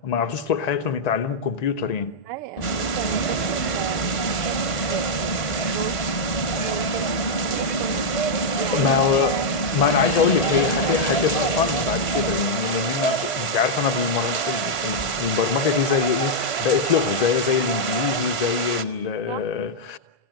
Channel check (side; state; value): right; late; 1.4 ms